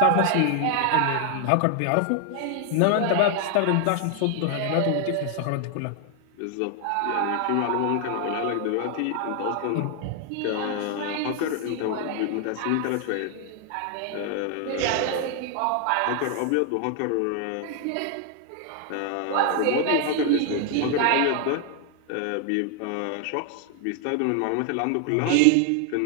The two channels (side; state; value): both; different; correlation 0.00